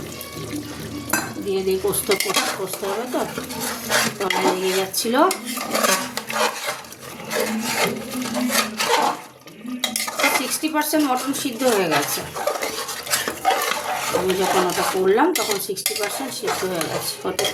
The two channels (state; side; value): identical; both; correlation 1.00